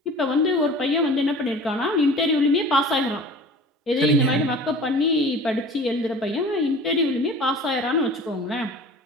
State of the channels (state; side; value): normal; both; correlation 0.42